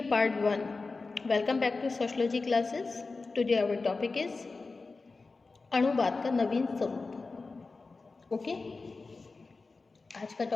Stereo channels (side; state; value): right; quieter; 3.9 dB